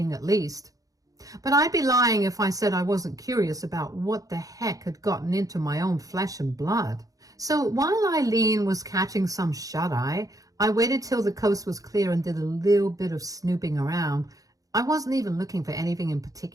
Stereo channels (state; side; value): late; left; 0.17 ms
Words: at least. But I'd be lying if I said I wasn't curious about what the heck had gotten into my own flesh and blood. So while Eileen was catching some shut-eye, I waited till the coast was clear and did a little bit of snooping around. I wasn't even looking for anything in